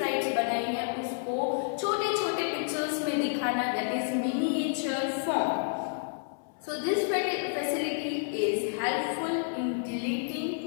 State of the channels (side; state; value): right; silent; 58 dB below the other